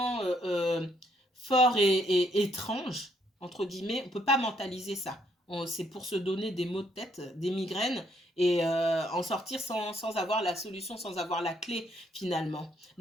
fort et étrange, entre guillemets, on ne peut pas mentaliser ça. C'est pour se donner des maux de tête, des migraines, et en sortir sans avoir la solution, sans avoir la clé finalement.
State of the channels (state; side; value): normal; both; correlation 0.71